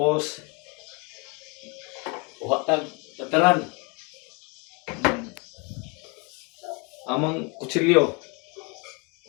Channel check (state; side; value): quieter; right; 30.9 dB